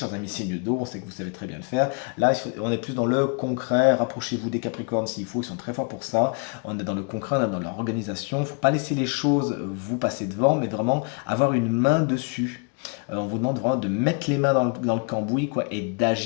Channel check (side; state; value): right; quieter; 34.6 dB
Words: amis signes d'eau, on sait que vous savez très bien le faire. Là, on est plus dans le concret, rapprochez-vous des Capricornes s'il faut, ils sont très forts pour ça. On est dans le concret, on est dans l'organisation. Il ne faut pas laisser les choses vous passer devant, mais vraiment avoir une main dessus. On vous demande vraiment de mettre les mains dans le cambouis quoi, et